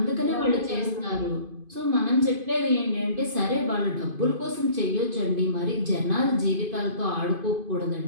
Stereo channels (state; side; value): late; left; 2.5 ms